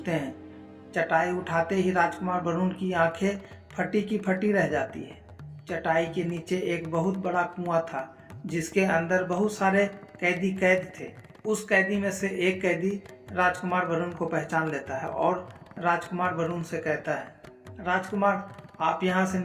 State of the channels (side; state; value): both; identical; correlation 1.00